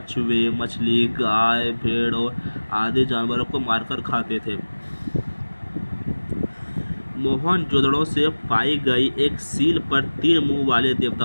मछली, गाय, भेड़ और आदि जानवरों को मारकर खाते थे। मोहनजोदड़ो से पाई गई एक सील पर 3 मुंह वाले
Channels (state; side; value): inverted; both; correlation -1.00